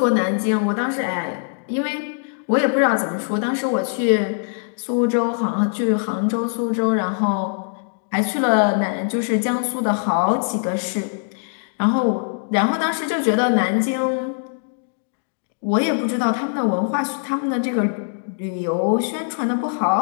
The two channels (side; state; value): right; silent; digital silence